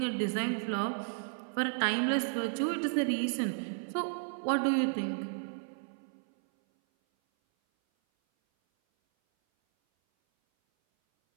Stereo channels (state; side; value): silent; left; 56 dB below the other